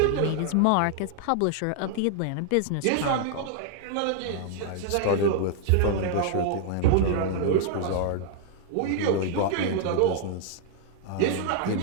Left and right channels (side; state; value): both; different; correlation -0.01